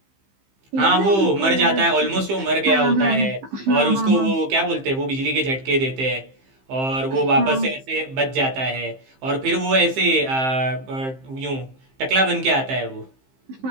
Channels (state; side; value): late; left; 15 ms